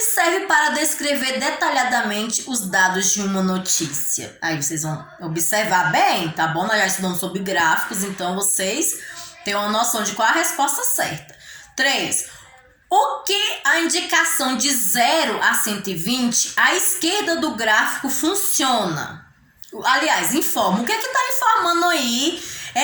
servem para descrever detalhadamente os dados de uma notícia? Aí vocês vão observar bem, tá bom? Nós já estudamos sobre gráficos, então vocês têm uma noção de qual a resposta certa. 3. O que a indicação de 0 a 120 à esquerda do gráfico funciona? Aliás, informa. O que está informando aí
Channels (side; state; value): both; identical; correlation 1.00